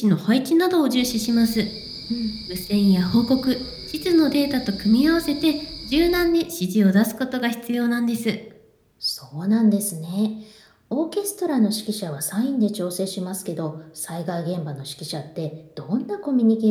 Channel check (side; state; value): both; identical; correlation 1.00